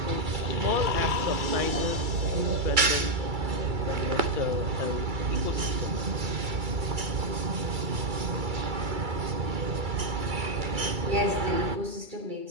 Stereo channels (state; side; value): late; left; 2.3 ms